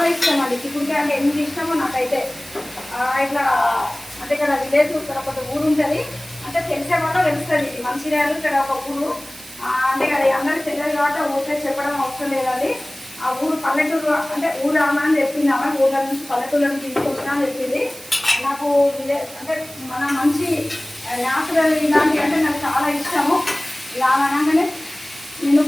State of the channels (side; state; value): right; noise; hiss, 17 dB below the sound